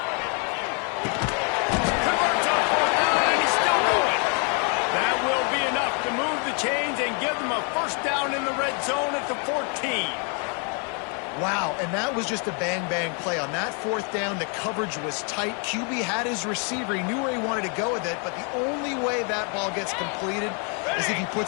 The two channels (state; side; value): quieter; right; 38.3 dB